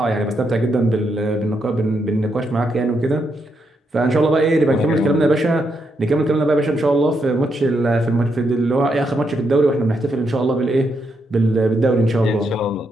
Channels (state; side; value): normal; both; correlation 0.80